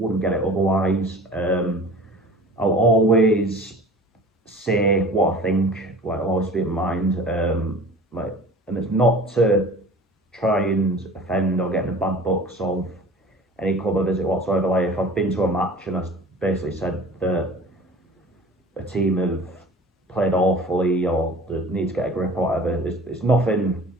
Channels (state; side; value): normal; both; correlation 0.42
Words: get it otherwise. I'll always say what I think. Like, I'll always speak my mind. And it's not to try and offend or get in the bad books of any club I visit whatsoever. Like, if I've been to a match and I basically said that a team have played awfully or that need to get a grip or whatever, it's nothing